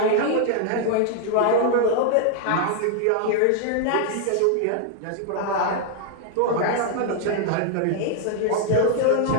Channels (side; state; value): both; different; correlation 0.00